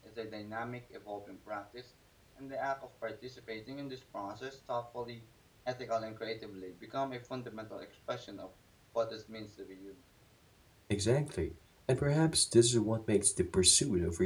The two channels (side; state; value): both; identical; correlation 1.00